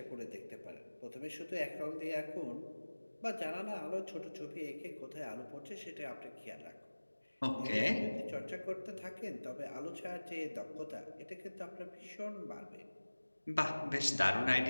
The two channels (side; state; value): both; inverted; correlation -1.00